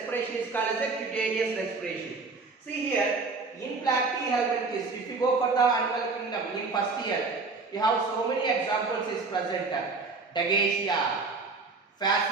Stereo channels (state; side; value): quieter; left; 4.0 dB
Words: is called as a cutaneous respiration. See here, in Platyhelminthes, if you go for the animal kingdom in first year, you have so many examples is present. Dagesia,